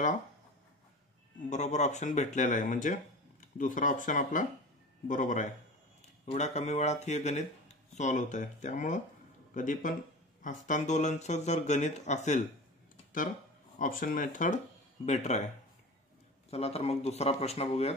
बरोबर ऑप्शन भेटलेला आहे, म्हणजे दुसरा ऑप्शन आपला बरोबर आहे. एवढ्या कमी वेळात हे गणित सॉल्व्ह होत आहे. त्यामुळं कधी पण हस्तांदोलनचं जर गणित असेल तर ऑप्शन मेथड बेटर आहे. चला तर मग दुसरा प्रश्न बघूयात.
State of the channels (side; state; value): both; normal; correlation 0.33